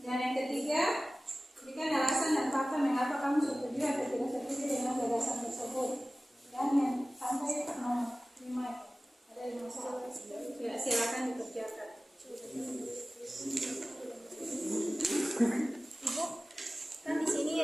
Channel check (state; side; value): normal; both; correlation 0.97